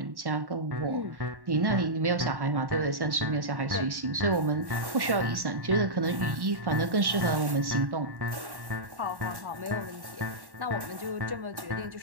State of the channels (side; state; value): left; late; 1.1 ms